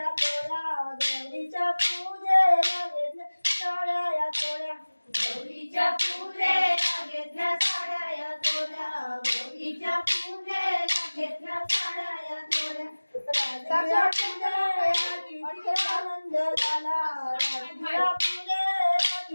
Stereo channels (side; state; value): both; inverted; correlation -1.00